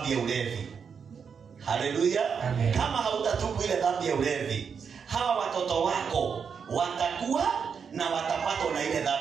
ya ulevi. Haleluya. Kama hautatubu ile dhambi ya ulevi, hawa watoto wako watakuwa na watapatwa na ile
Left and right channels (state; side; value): quieter; left; 6.4 dB